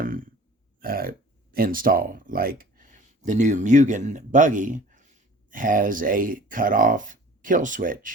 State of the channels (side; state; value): both; normal; correlation 0.46